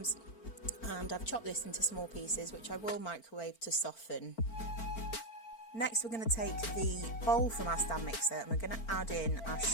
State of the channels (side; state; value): right; late; 4.4 ms